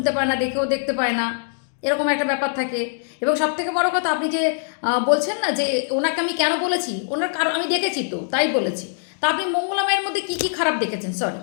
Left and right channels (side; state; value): right; silent; digital silence